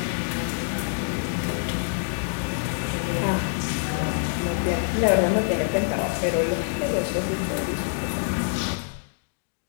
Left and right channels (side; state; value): right; silent; digital silence